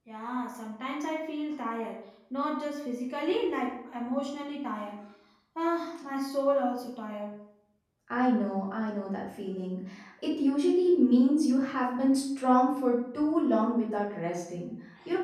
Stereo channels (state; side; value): identical; both; correlation 1.00